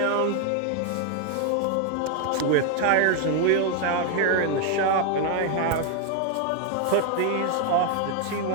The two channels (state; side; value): different; both; correlation 0.00